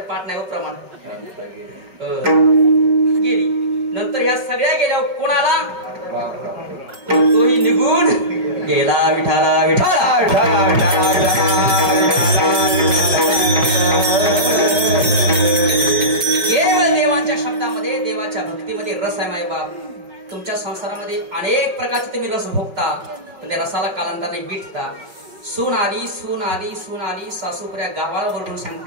पाठ नाही प्रमाण गेली नंतर ह्या सगळ्या गेल्या कोणाला तोही निघून गेला विठाला विठाला केवळ देवांच्या शब्दामध्ये देवाच्या भक्तीमध्ये रस आहे मायबाप. तुमच्या संसारामध्ये अनेक प्रकारचे तुम्ही रस भोगता पण त्या रसाला कालांतराने विटता. सून आली सून आली सून आली सासूपुऱ्या गावाला बोलून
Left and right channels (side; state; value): left; late; 5.3 ms